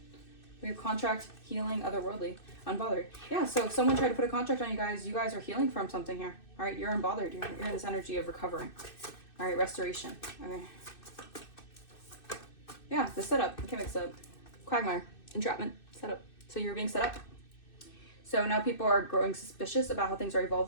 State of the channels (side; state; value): right; late; 2.6 ms